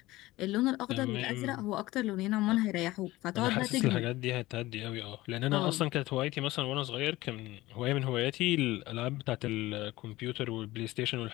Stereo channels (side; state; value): right; quieter; 18.3 dB